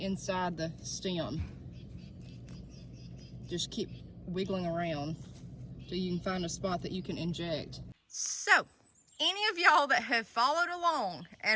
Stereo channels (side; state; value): both; identical; correlation 1.00